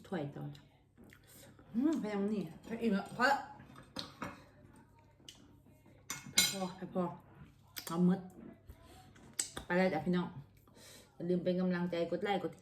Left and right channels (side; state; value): both; identical; correlation 1.00